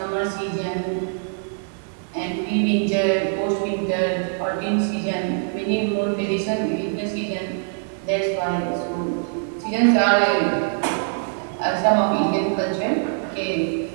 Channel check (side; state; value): left; silent; digital silence